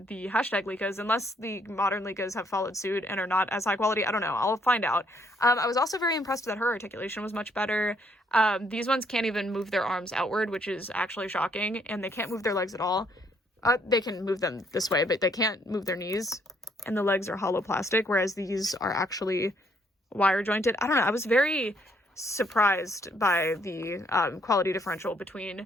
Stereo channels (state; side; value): normal; both; correlation 0.68